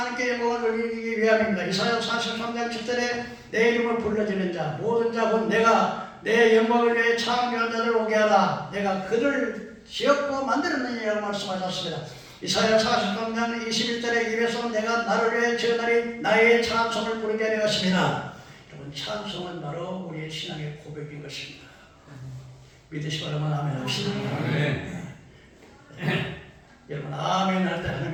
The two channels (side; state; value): both; identical; correlation 1.00